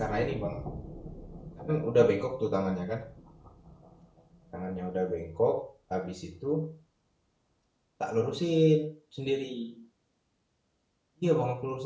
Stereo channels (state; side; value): identical; both; correlation 1.00